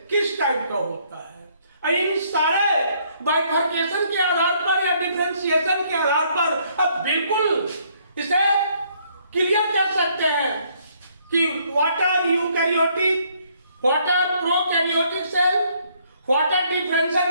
किस टाइप का होता है। इन सारे बाइफर्केशन के आधार पर या डिफरेंशिएशन के आधार पर अब बिल्कुल इसे क्लियर कर सकते हैं कि what are eukaryotic, what are prokaryotic cell, what are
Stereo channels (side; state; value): both; inverted; correlation -0.66